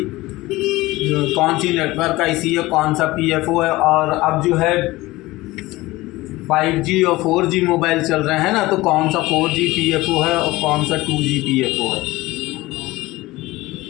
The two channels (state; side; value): quieter; right; 19.3 dB